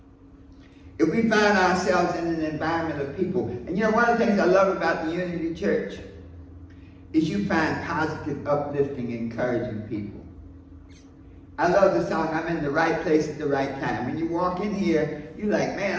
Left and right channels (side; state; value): both; identical; correlation 1.00